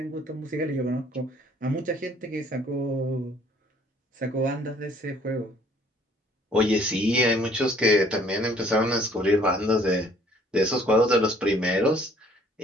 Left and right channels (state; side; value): normal; both; correlation 0.59